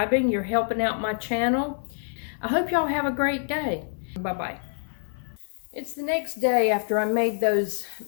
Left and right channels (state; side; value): silent; right; 60 dB below the other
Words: You're helping out my channel. I hope y'all have a great day. Bye-bye. It's the next day after I made those